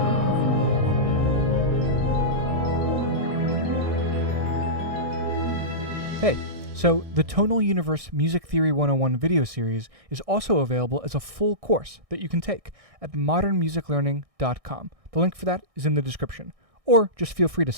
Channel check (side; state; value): left; late; 1.6 ms